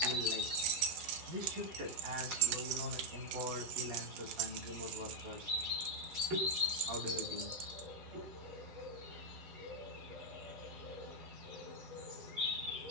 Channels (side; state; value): left; late; 12 ms